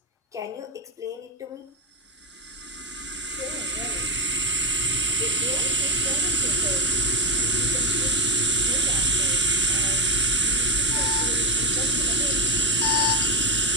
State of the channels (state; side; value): normal; both; correlation 0.09